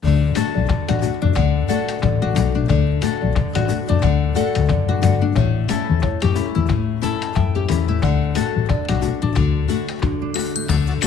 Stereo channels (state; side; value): quieter; right; 4.9 dB